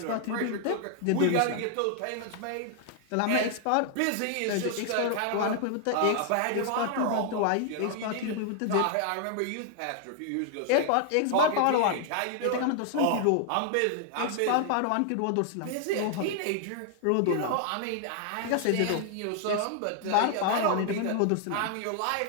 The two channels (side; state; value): both; different; correlation 0.00